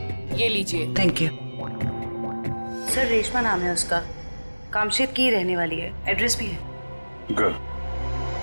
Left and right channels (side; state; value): both; inverted; correlation -1.00